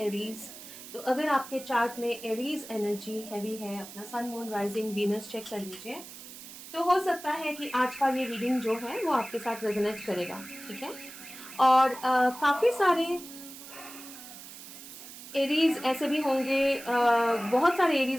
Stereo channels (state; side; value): noise; right; hiss, 14 dB below the sound